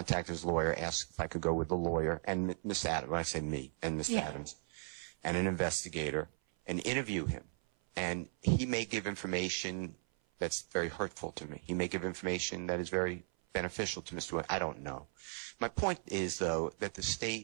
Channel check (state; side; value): silent; left; 53 dB below the other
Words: his lawyer, ask if I could go with the lawyer, and Miss Adams, when I say me, and Miss Adams, and an investigator, and interview him. And he may give information that's very hurtful to me. He may give information that is very beneficial to Mr. Williams. I don't know. My point is, though, that the